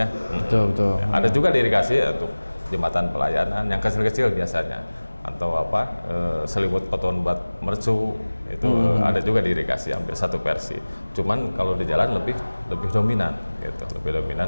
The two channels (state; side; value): inverted; both; correlation -1.00